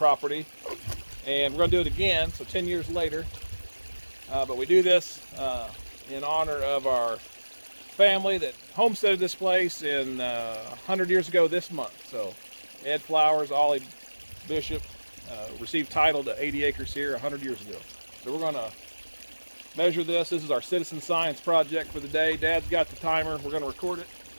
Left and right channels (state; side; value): inverted; both; correlation -1.00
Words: and we're going to do it again, so 10 years later. But we do this in honor of our family that homesteaded this place in 100 years ago this month. So Ed Flowers, Ollie Bishop received title to 80 acres here 100 years ago. So we're going to measure this. This is our citizen science project for the day. Dad's got the timer. We're going to record it.